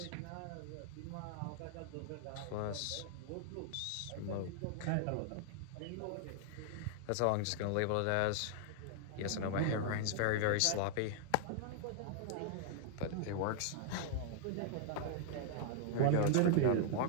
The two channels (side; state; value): both; different; correlation -0.01